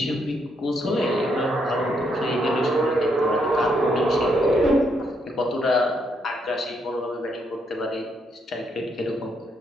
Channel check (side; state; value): both; normal; correlation 0.75